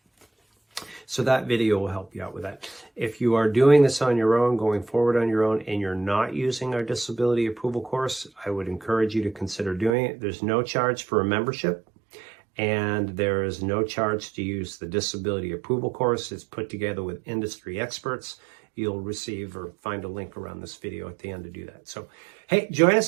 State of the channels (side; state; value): left; drops out; at 10.0 s